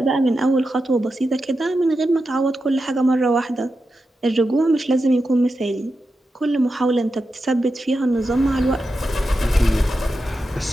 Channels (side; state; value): both; normal; correlation 0.89